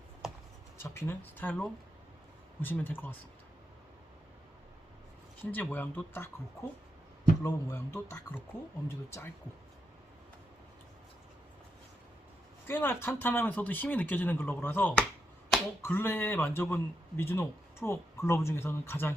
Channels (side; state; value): both; normal; correlation 0.84